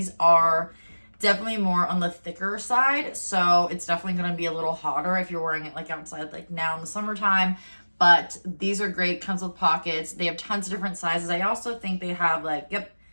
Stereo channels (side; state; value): both; inverted; correlation -1.00